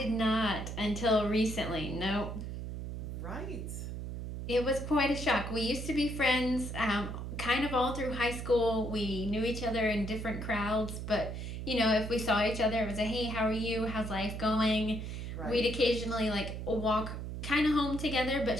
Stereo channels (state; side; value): noise; right; hum, 6 dB below the sound